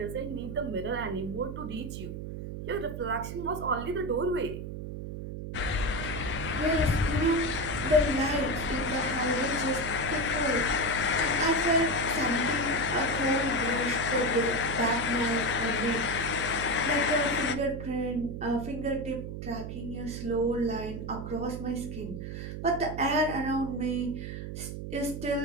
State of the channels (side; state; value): right; noise; hum, 7 dB below the sound